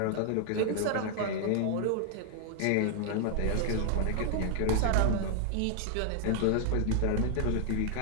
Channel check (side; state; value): both; different; correlation 0.00